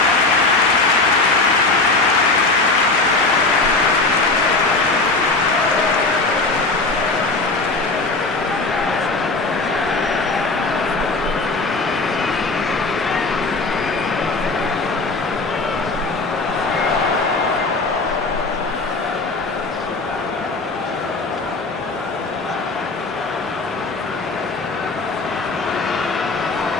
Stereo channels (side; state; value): right; quieter; 3.5 dB